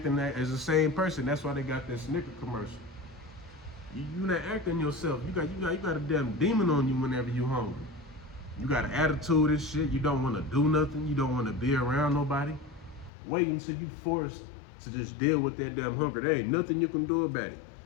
as the same person. That's why they got that Snicker commercial. You not acting yourself. You got a damn demon on you whenever you hungry. You got an attitude and shit. You don't want to do nothing. You don't want to be around nobody. Wait until you forced to just deal with that damn hunger. There ain't nothing you can do about it.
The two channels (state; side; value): drops out; right; at 13.1 s